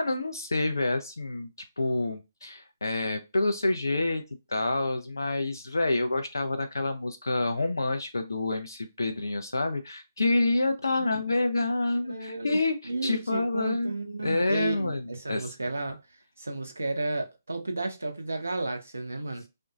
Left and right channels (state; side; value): inverted; both; correlation -0.90